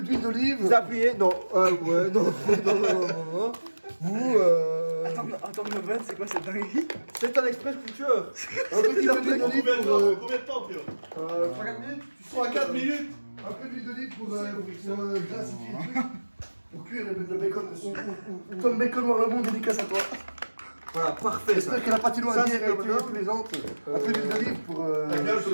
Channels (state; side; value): inverted; both; correlation -1.00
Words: d'huile d'olive. vous appuyez, non, ouais, non. Vous Attends, Novan, c'est quoi cette dinguerie? c'est un express cooker. Un petit peu d'huile d'olive pour. Combien de temps, Pierre 3-4 minutes. 3-4 minutes. Un peu d'huile d'olive pour glacifier le truc. Pour cuire le bacon dessus. Tom Bacon Noir le Monde, dédicace à toi. Voilà, parfait ça. J'espère que la patinoire Ça, a bien c'est été maintenant. plaisante. Un peu d'huile d'olive pour.